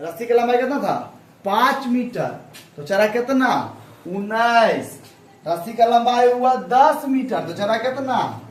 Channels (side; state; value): both; identical; correlation 1.00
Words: की लंबाई कितना था, 5 मीटर, तो चला कितना, 19। रस्सी का लंबाई हुआ 10 मीटर, तो चला कितना,